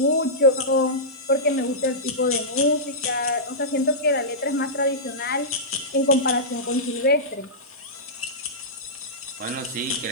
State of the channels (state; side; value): noise; right; hiss, 30 dB below the sound